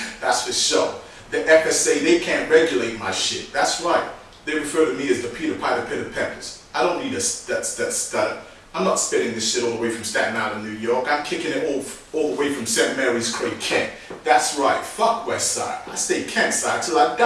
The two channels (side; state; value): both; identical; correlation 1.00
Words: for sure. The FSA, they can't regulate my shit. That's right. They refer to me as the Peter Piper Pit of Peppers. I don't need that stutter. I'm not spitting this shit all the way from Staten Island, New York. I'm kicking it all the way from St. Mary's Cray, Kent. That's right. Fuck West Side. I stay Kent side till I